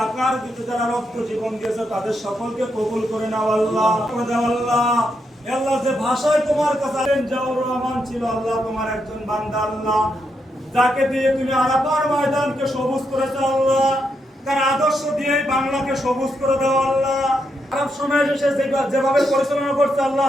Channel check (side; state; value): both; normal; correlation 0.81